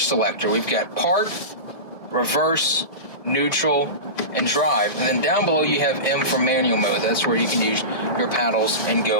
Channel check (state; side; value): late; right; 1.9 ms